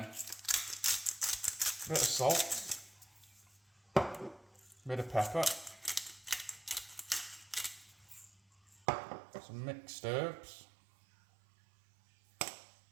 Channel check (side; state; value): left; drops out; at 8.8 s